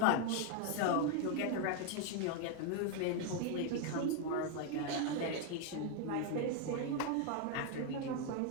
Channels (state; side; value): different; both; correlation 0.01